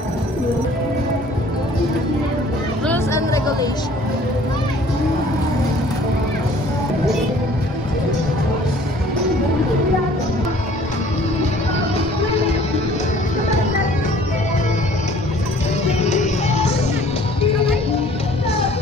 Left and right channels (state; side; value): normal; both; correlation 0.53